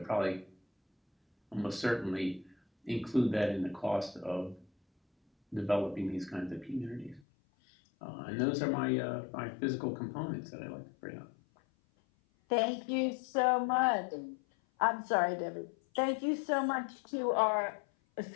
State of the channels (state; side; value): drops out; right; at 7.2 s